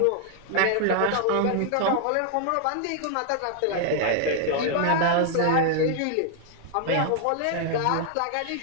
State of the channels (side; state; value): both; different; correlation 0.00